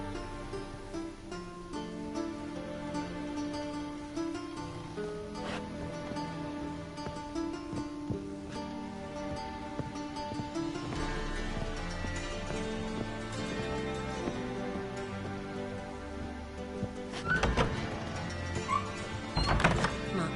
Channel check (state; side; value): identical; both; correlation 1.00